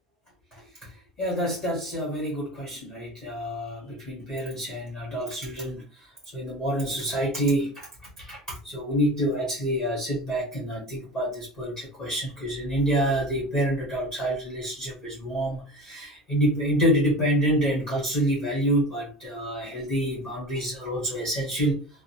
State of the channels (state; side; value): normal; both; correlation 0.34